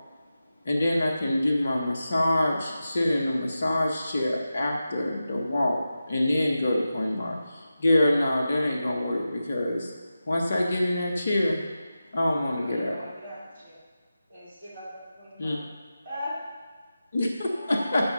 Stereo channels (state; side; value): inverted; both; correlation -0.92